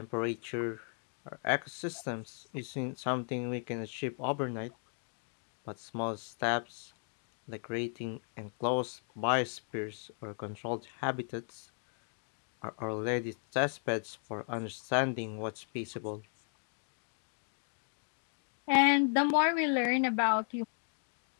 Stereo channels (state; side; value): silent; right; 54 dB below the other